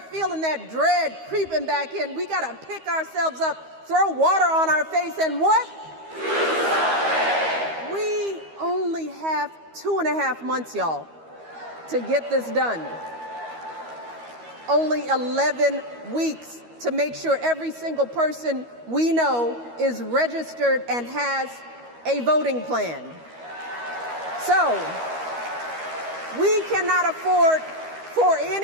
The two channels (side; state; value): left; late; 13 ms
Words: feeling that dread creeping back in, we got to pick ourselves up, throw water on our face, and what? We only have 2.5 months, y'all, to get this done. Only 11 weeks to make sure every single person we know is registered and has a voting plan. So we cannot afford for